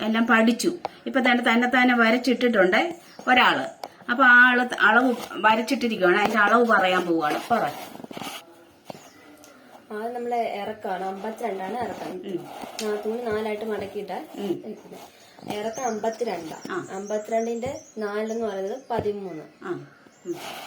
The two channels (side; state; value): both; identical; correlation 1.00